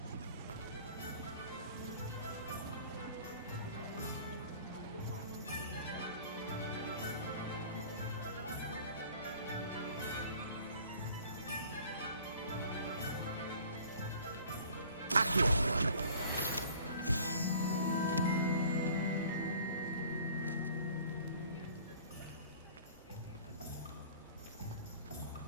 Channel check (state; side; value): inverted; both; correlation -0.50